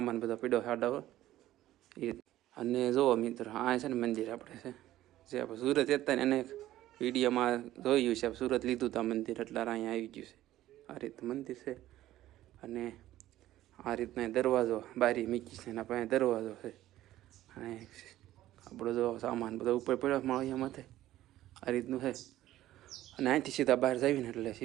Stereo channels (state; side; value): quieter; left; 14.3 dB